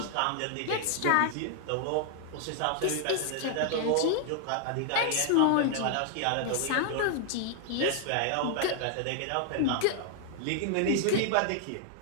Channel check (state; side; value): different; both; correlation 0.00